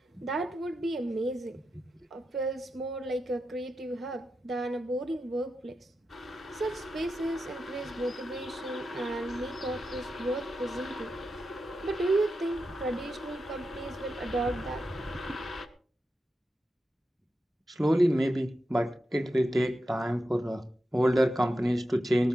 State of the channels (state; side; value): normal; both; correlation 0.89